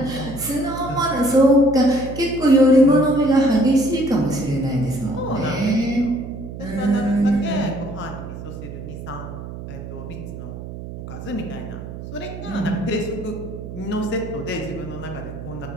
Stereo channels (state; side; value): noise; right; hum, 10 dB below the sound